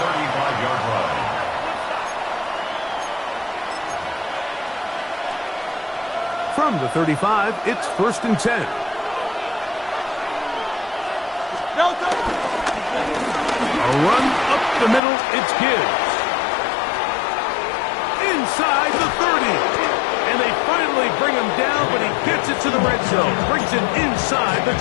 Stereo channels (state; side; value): drops out; right; at 15.0 s